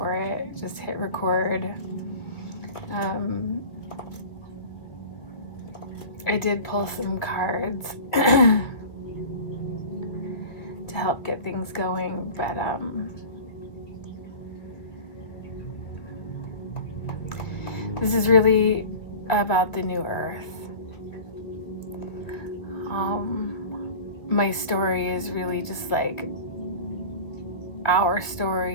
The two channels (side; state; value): right; late; 1.9 ms